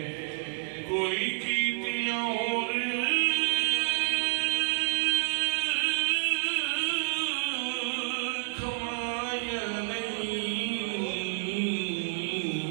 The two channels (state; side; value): silent; left; 58 dB below the other